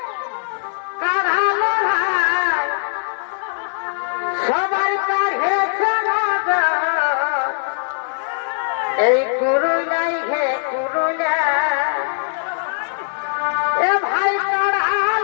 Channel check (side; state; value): right; silent; digital silence